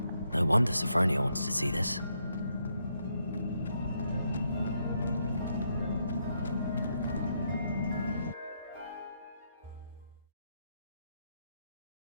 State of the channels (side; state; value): both; inverted; correlation -0.77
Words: No wonder Sophronia wants to see this.